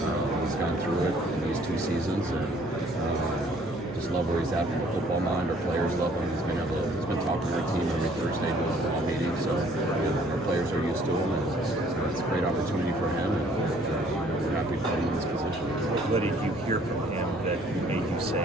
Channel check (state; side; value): normal; both; correlation 0.59